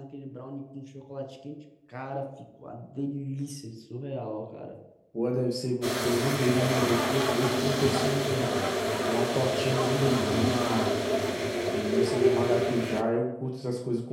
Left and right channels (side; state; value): both; identical; correlation 1.00